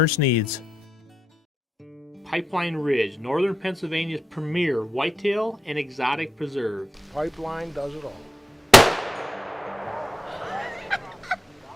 needs, Pipeline Ridge, Northern Pennsylvania's premier whitetail and exotic preserve. Pipeline does it all.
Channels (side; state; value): both; normal; correlation 0.87